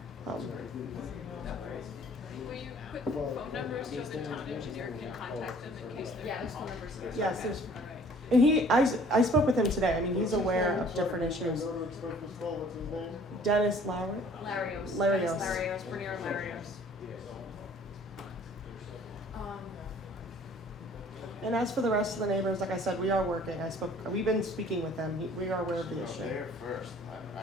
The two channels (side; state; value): both; normal; correlation 0.53